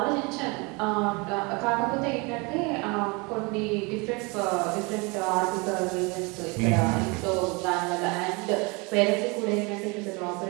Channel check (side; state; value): left; quieter; 28.4 dB